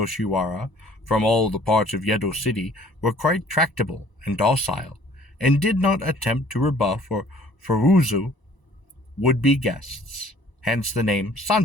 from all the parts of Yedo City were quite tractable and docile, and did not attempt to rebuff or furuzu would-be guests, hence the name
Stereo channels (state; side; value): late; right; 1.0 ms